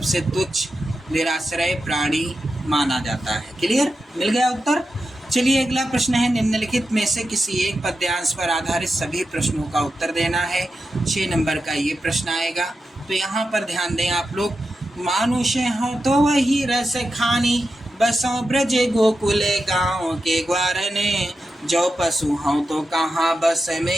तुच्छ निराश्रय प्राणी माना जाता है। क्लियर? मिल गया उत्तर। चलिए, अगला प्रश्न है, निम्नलिखित में से किसी एक पद्यांश पर आधारित सभी प्रश्नों का उत्तर देना है। 6 नंबर का ये प्रश्न आएगा। तो यहाँ पर ध्यान दें आप लोग। मानुष हो तो वही रस खानी, बसों ब्रज गोकुल गाँव के ग्वारने, जो पशु हो तो कहाँ बस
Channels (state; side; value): normal; both; correlation 0.90